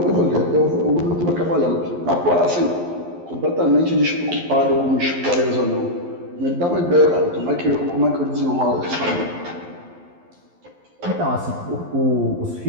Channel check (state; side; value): late; left; 11 ms